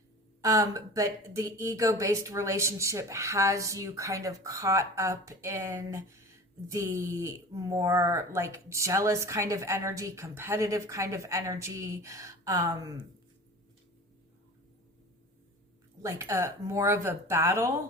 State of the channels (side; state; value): both; normal; correlation 0.37